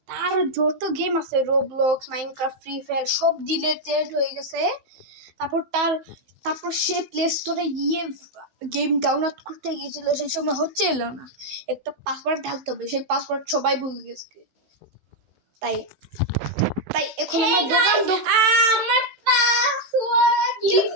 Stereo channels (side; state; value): left; late; 15 ms